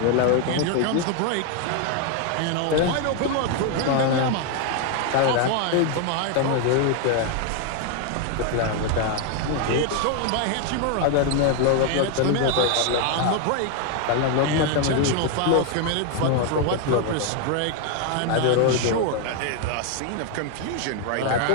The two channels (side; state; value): both; different; correlation 0.01